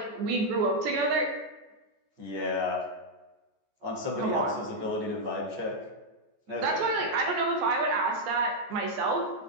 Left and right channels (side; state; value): left; late; 14 ms